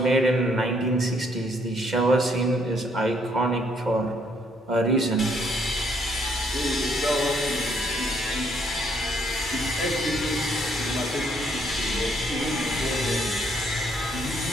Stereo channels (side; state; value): both; normal; correlation 0.69